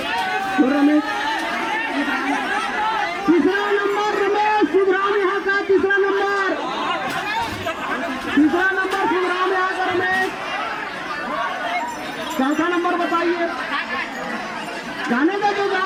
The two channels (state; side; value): identical; both; correlation 1.00